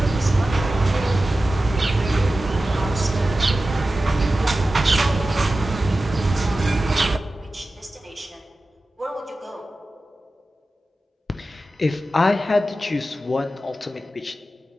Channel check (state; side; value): normal; both; correlation 0.94